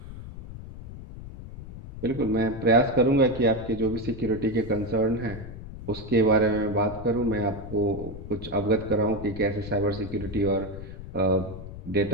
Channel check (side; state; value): left; noise; rumble, 12 dB below the sound